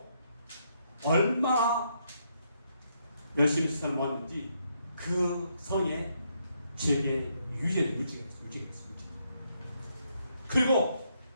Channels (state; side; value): inverted; both; correlation -0.76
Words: 얼마나 열심히 시선을 모았는지 그 성의 지역의 유지가 있어요. 그리고